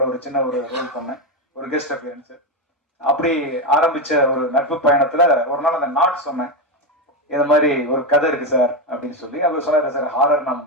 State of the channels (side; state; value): both; normal; correlation 0.10